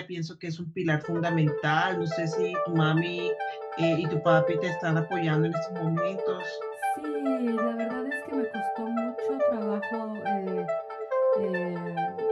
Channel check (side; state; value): both; identical; correlation 1.00